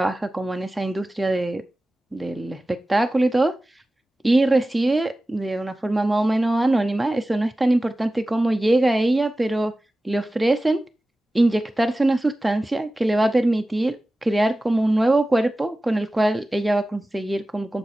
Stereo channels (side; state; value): both; normal; correlation 0.96